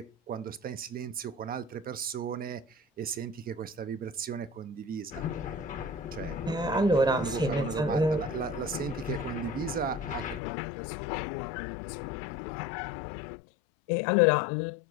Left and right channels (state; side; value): drops out; right; at 10.4 s